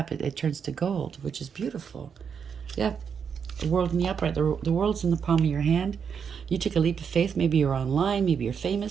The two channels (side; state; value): left; quieter; 6.9 dB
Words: it turns to gold, which is beautiful. Yeah, the world in the upright. The world's in the palm of your hand. You took a leap of faith. Maybe you're online. Maybe you're